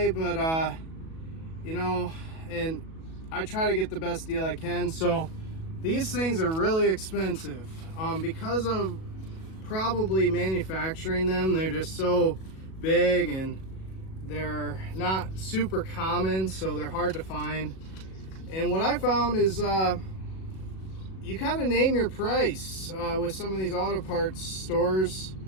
but you know, and I try to get the best deal I can. So these things are really expensive because of probably manufacturing them. They're just so big and they're not super common, so they're hard to find. And what I found is you kind of name your price with some of these auto parts stores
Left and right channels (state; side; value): late; right; 37 ms